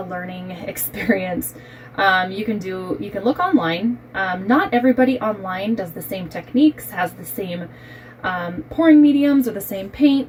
learning experience. You can look online. Not everybody online does the same techniques, has the same pouring mediums or the same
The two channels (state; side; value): identical; both; correlation 1.00